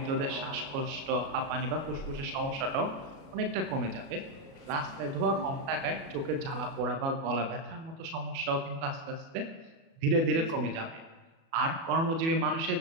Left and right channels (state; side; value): late; left; 37 ms